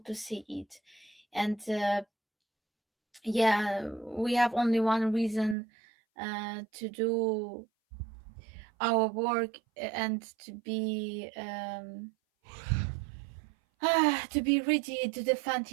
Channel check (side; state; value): left; drops out; at 5.6 s